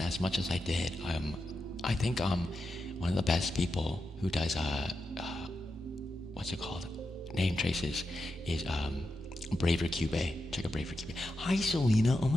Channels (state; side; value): normal; both; correlation 0.88